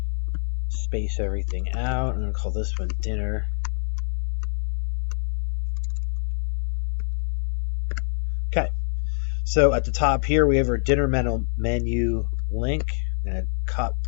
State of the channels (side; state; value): right; silent; digital silence